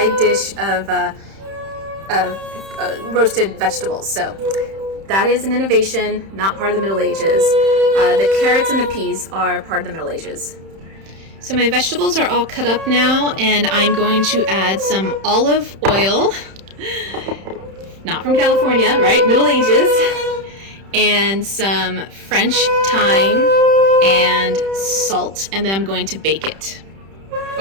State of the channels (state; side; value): late; left; 31 ms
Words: dish of roasted vegetables. So that is an innovation, not part of the Middle Ages. The carrots and the peas are part of the Middle Ages. So my vegetables are all cut up now, and I'm going to add some olive oil, not from California, right? Middle Ages, and some French thyme and salt, and then I'm going to bake it,